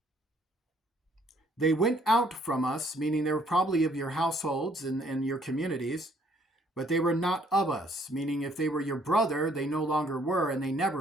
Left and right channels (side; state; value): both; normal; correlation 0.64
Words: They went out from us, meaning they were probably of your households and your communities, but they were not of us, meaning if they were your brother, they no longer were and they